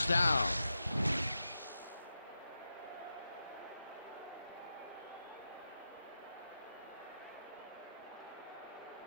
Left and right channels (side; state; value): both; inverted; correlation -0.88